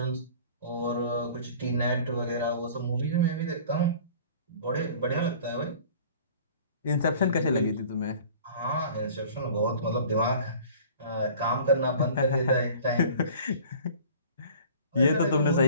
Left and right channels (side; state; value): both; inverted; correlation -0.46